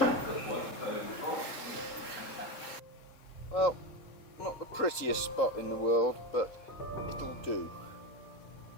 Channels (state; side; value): late; right; 3.7 ms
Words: Well, not the prettiest spot in the world, but it'll do.